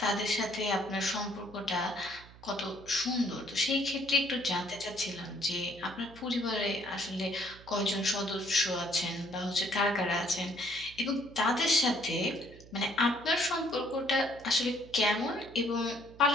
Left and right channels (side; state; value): right; noise; hum, 21 dB below the sound